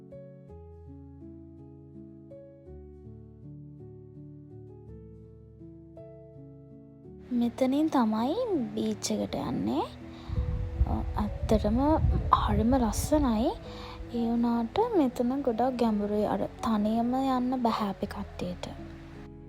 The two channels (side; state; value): both; identical; correlation 1.00